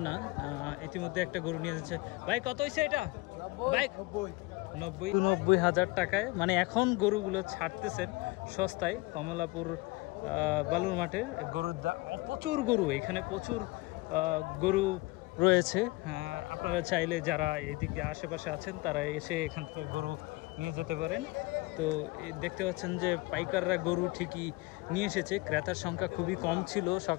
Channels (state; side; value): quieter; right; 23.2 dB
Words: না। ইতিমধ্যে একটা গরু নিয়ে যাচ্ছে। ভাই, কত হয়েছে এটা? ভাই, 90,000 টাকায়। মানে এখন গরুগুলো ছাড়তেছেন সস্তায় কমলাপুর বালুর মাঠে। গরুর প্রচুর গরু, এখানে প্রচুর গরু রয়েছে। আপনারা চাইলে যারা এদিকে আশেপাশে আছেন তারা এসে এখান থেকে গরু নিয়ে যেতে পারেন। তো দেখতে পাচ্ছেন যে পাইকাররা গরু ঠিকই নিয়ে এসেছে। ক্রেতার সংখ্যা খুবই কম ছিল